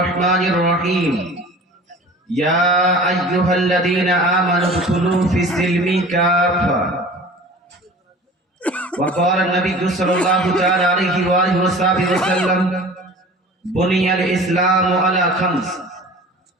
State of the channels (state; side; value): normal; both; correlation 0.42